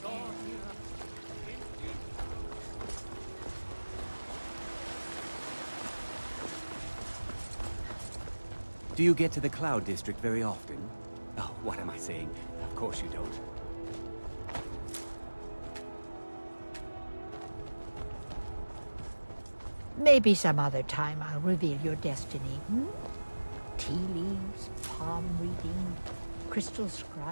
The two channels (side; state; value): both; inverted; correlation -1.00